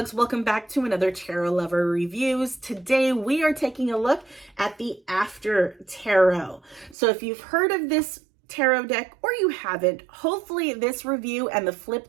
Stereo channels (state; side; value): drops out; left; at 7.0 s